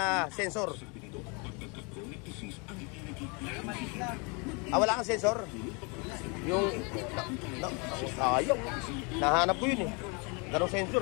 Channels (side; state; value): right; quieter; 31.9 dB